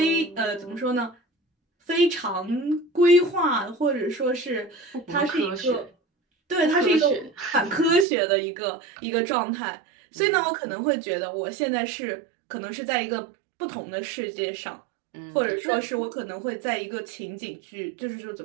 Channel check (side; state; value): left; drops out; at 8.1 s